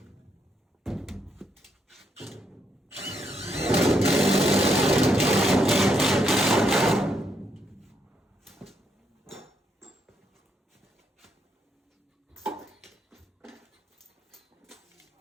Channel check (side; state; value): both; normal; correlation 0.77